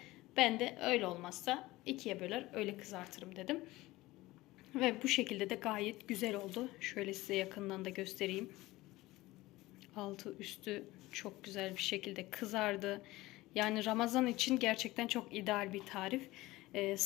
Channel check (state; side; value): quieter; right; 18.9 dB